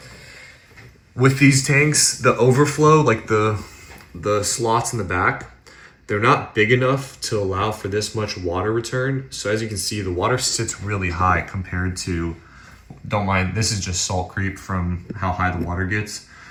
with these tanks, the overflow, like the slots in the back, they're not big enough to allow for this much water return. So as you can see, the water sits really high compared to, don't mind, this is just salt creep from how high the water gets,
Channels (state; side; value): identical; both; correlation 1.00